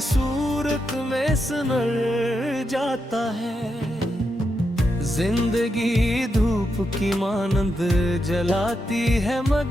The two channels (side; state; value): both; normal; correlation 0.84